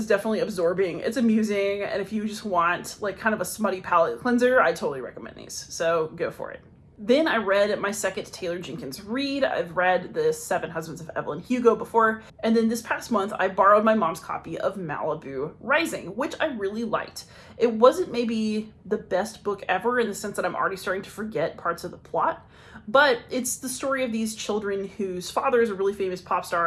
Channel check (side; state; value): both; identical; correlation 1.00